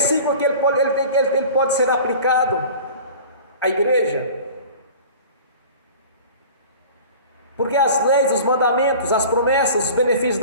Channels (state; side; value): inverted; both; correlation -0.41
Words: que ele pode ser aplicado à igreja, porque as leis, os mandamentos, as promessas, os benefícios